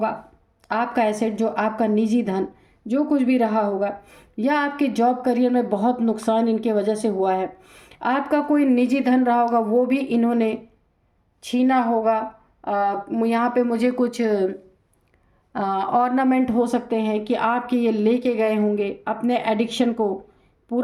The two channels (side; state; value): both; identical; correlation 1.00